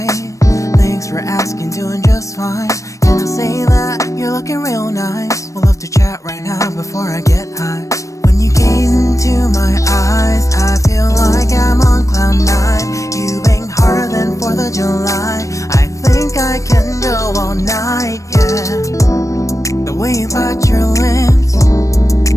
Thanks for asking, doing just fine. Can I say that you're looking real nice? We'll love to chat right now before I get high. When you gaze into my eyes, I feel like I'm on cloud nine. You bang harder than 4th of July. I think I can go all night, yeah. The way you bite your lips,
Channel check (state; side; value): late; right; 0.16 ms